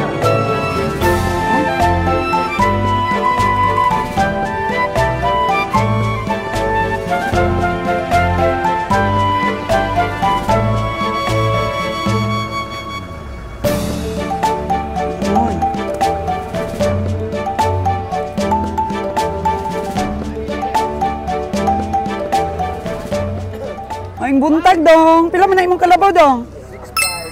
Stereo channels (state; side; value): identical; both; correlation 1.00